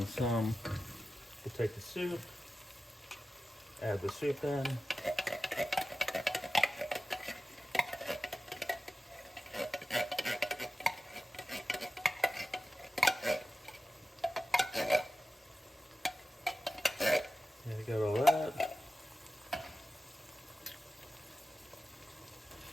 some, we'll take the soup, add the soup in. There you got all that.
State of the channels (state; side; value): normal; both; correlation 0.94